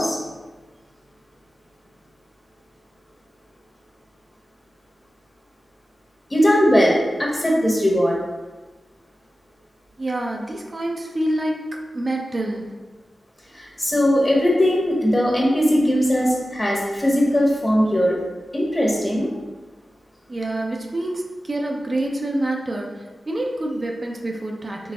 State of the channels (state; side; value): normal; both; correlation 0.94